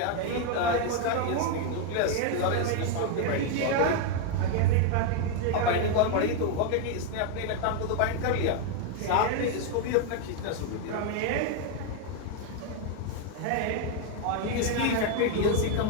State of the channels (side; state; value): both; different; correlation 0.01